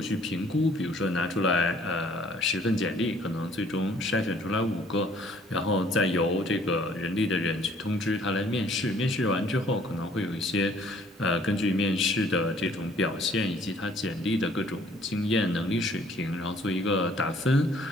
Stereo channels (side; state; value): both; normal; correlation 0.59